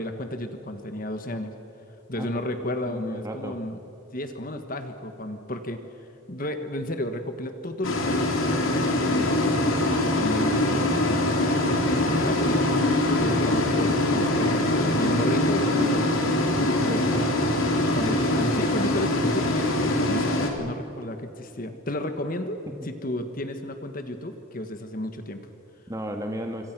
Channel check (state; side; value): normal; both; correlation 0.36